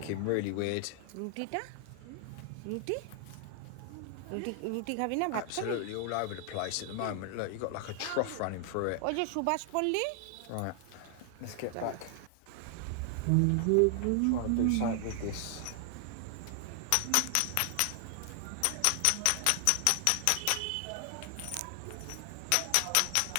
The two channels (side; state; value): both; different; correlation 0.00